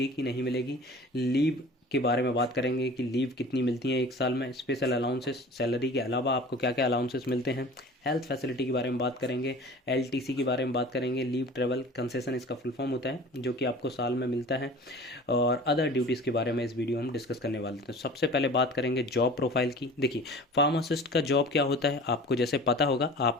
कि नहीं मिलेगी, लीव के बारे में बात करेंगे कि लीव कितनी मिलती है एक साल में, स्पेशल अलाउंसेस, सैलरी के अलावा आपको क्या क्या अलाउंसेस मिलते हैं, हेल्थ फैसिलिटी के बारे में बात करेंगे, LTC के बारे में बात करेंगे, लीव ट्रेवल कंसेशन इसका फुल फॉर्म होता है जो कि आपको साल में मिलता है, और अदर ड्यूटीज़ के बारे में इस वीडियो में हम डिस्कस करने वाले थे। तो सबसे पहले बात करेंगे जॉब प्रोफाइल की। देखिए, फार्मासिस्ट का जॉब क्या होता है आपको जैसे पता होगा,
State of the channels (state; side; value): normal; both; correlation 0.42